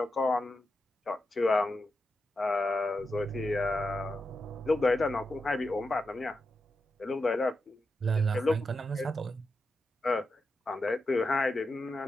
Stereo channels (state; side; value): normal; both; correlation 0.88